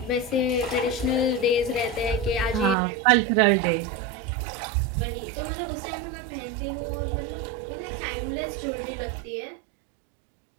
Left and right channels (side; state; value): left; drops out; at 2.8 s